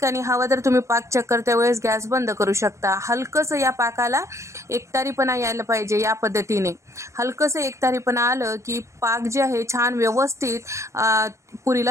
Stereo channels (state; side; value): late; left; 0.14 ms